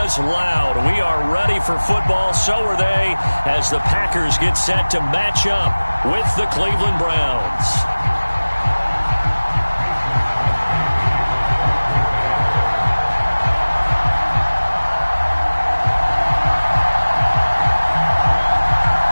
loud. We are ready for football, so are they, as the Packers get set to match up with the Cleveland Browns.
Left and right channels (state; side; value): inverted; both; correlation -1.00